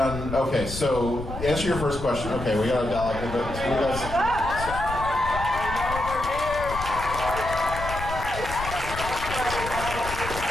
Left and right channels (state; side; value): noise; left; rumble, 8 dB below the sound